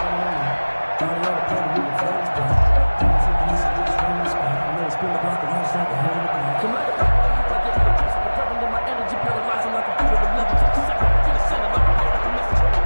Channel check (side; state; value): both; inverted; correlation -1.00